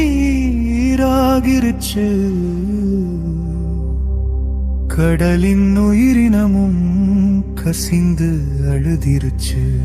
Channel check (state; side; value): identical; both; correlation 1.00